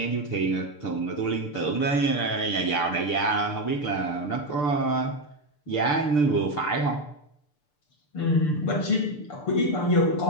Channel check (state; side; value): late; right; 6.8 ms